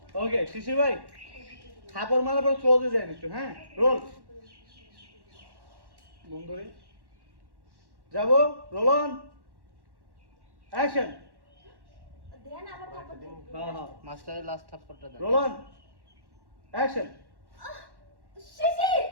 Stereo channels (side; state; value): left; late; 1.1 ms